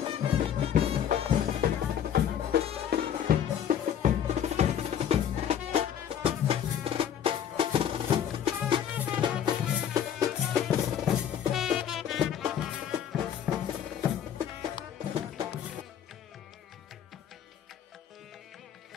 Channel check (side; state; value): right; quieter; 9.3 dB